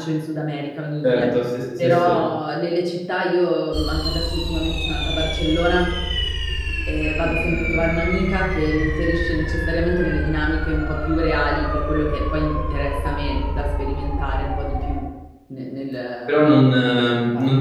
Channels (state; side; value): identical; both; correlation 1.00